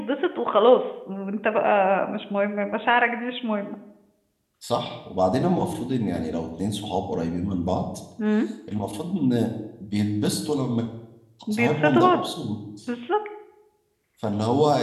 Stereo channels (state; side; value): identical; both; correlation 1.00